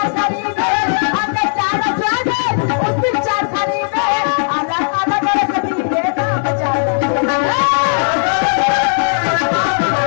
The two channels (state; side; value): silent; right; 69 dB below the other